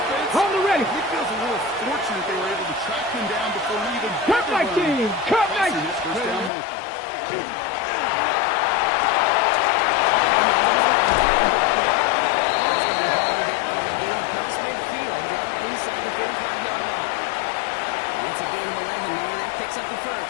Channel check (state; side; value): drops out; right; at 6.5 s